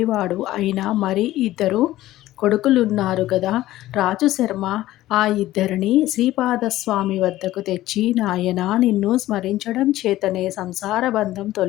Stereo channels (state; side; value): quieter; right; 15.4 dB